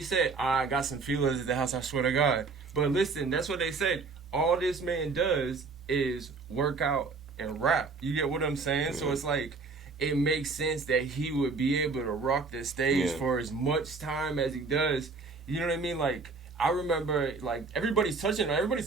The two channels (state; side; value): quieter; left; 4.3 dB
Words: said. I got some feelers at the house, I swear to God. But listen, that's what they said. All this man does is work out and rap. You get what I'm saying? Yeah. So it's like, it makes sense that he would be able to rock the stage for as much time as he does. You know what I mean? Like, I remember, like, everybody's talking about